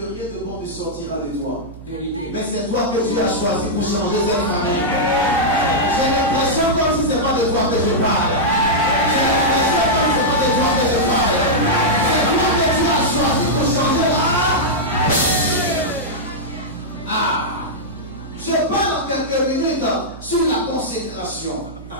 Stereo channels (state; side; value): noise; right; hum, 16 dB below the sound